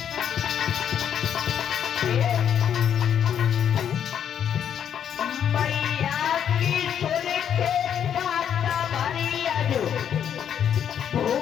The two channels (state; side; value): quieter; right; 8.9 dB